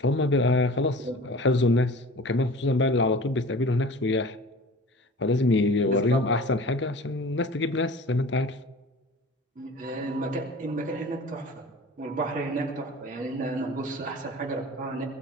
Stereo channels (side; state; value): both; normal; correlation 0.41